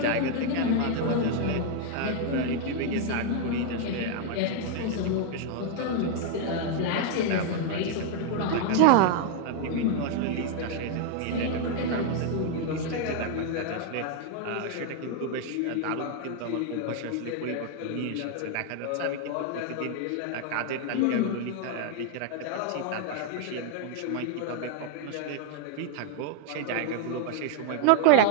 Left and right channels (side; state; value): both; different; correlation 0.00